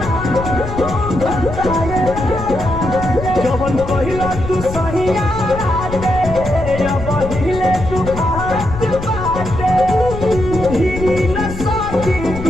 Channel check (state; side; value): noise; left; rumble, 8 dB below the sound